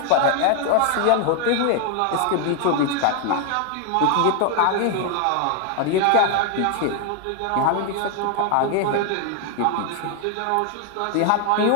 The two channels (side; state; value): both; different; correlation 0.00